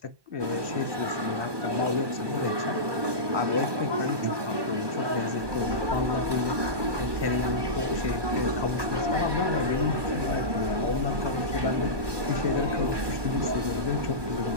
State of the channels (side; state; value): left; late; 1.2 ms